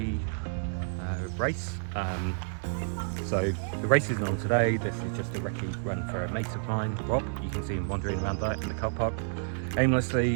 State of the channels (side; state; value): left; silent; digital silence